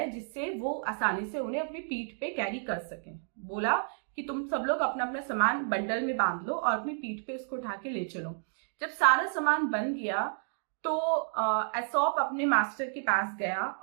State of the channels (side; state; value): left; silent; digital silence